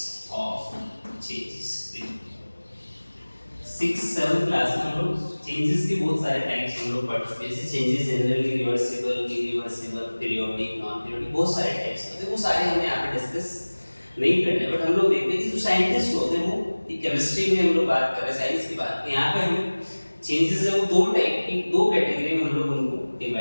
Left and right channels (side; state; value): both; inverted; correlation -1.00